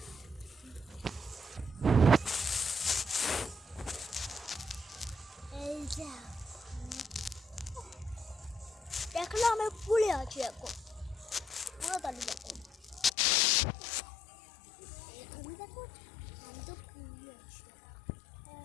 এই যে দেখলো আমি পুলে আছি এখন পুরো তালি দেখো তুমি দেখো আমি তো পুলে আছি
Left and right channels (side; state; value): right; drops out; at 13.1 s